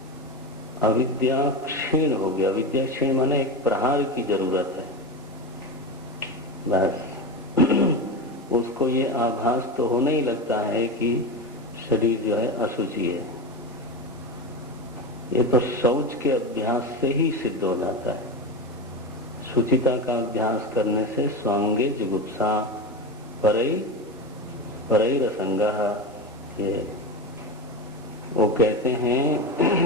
अविद्या क्षीण हो गया। अविद्या क्षीण माने एक प्रहार की जरूरत है बस। उसको ये आभास तो होने ही लगता है कि शरीर जो है अशुचि है। ये तो शौच के अभ्यास से ही सिद्ध हो जाता है। शुचिता का अभ्यास करने से स्वांगे जुगुप्सा परैरसंगः, ये वो कहते हैं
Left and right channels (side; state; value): both; normal; correlation 0.20